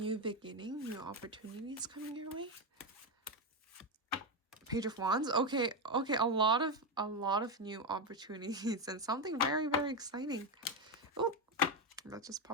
beginning, new opportunities coming your way. Page of Wands. Okay, a lot of new opportunities and something very, very exciting. Oh, that just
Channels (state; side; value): normal; both; correlation 0.09